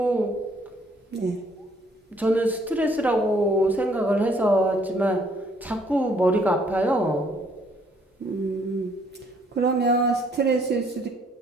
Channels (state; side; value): normal; both; correlation 0.64